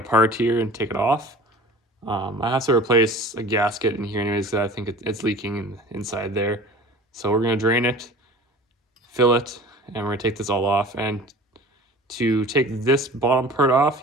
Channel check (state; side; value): normal; both; correlation 0.41